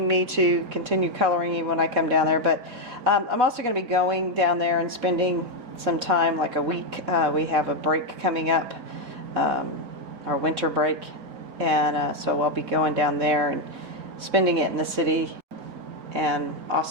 me to continue coloring even when I come down there. But I'm also going to be going down there and spending some time, like a week. We have a break coming up, our winter break, and so I'll be going down there and spending it in the city and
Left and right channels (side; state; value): left; late; 4.1 ms